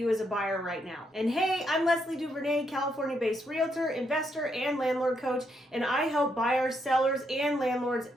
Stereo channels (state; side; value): normal; both; correlation 0.77